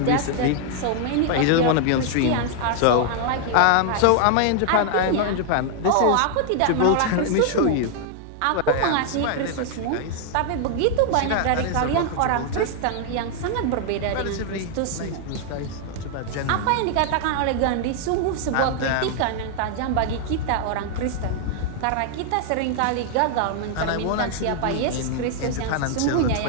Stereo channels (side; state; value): both; different; correlation 0.00